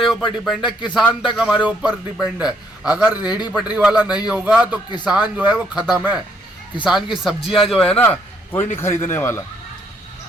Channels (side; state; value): both; normal; correlation 0.70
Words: ऊपर डिपेंड है। किसान तक हमारे ऊपर डिपेंड है। अगर रेहड़ी पटरी वाला नहीं होगा तो किसान जो है वो खत्म है। किसान की सब्जियां जो है ना, कोई नहीं खरीदने वाला,